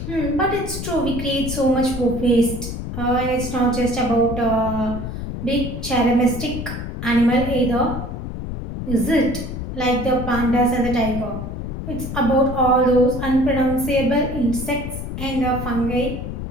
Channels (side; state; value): left; noise; rumble, 6 dB below the sound